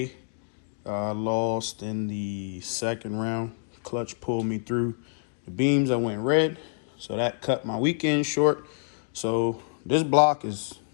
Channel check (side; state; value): right; silent; digital silence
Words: Lost in the second round. Clutch pulled me through the beams. I went red, so that cut my weekend short. So this block is